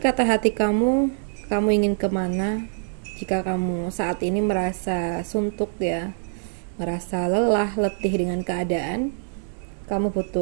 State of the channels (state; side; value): silent; left; digital silence